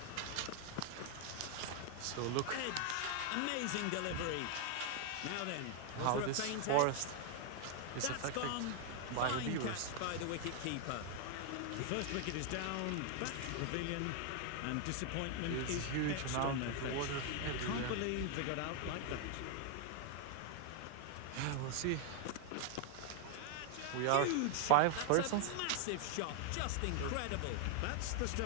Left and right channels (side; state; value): both; different; correlation 0.00